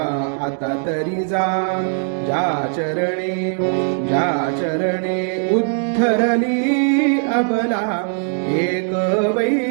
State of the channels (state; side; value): silent; left; 66 dB below the other